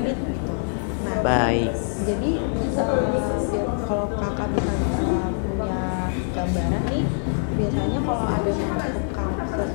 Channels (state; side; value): silent; right; digital silence